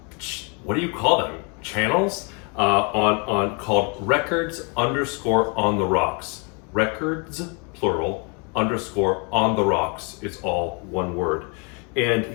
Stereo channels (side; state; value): right; quieter; 34.3 dB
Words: what do you call them? Channels? Called records_on the rocks. Records, plural, _on the rocks. It's all one word. And